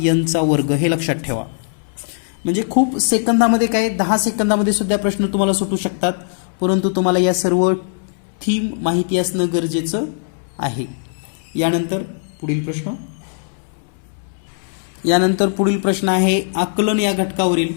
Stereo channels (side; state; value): right; silent; 66 dB below the other